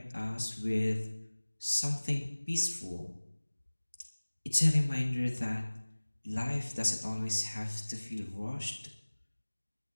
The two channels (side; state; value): both; inverted; correlation -1.00